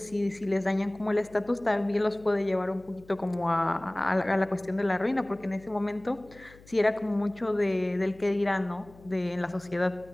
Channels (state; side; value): noise; left; hum, 23 dB below the sound